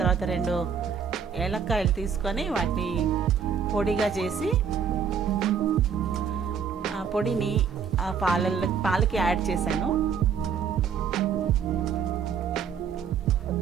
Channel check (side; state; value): left; quieter; 6.9 dB